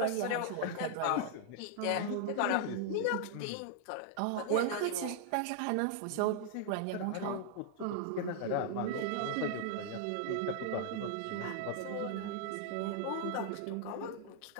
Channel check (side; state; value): both; different; correlation -0.01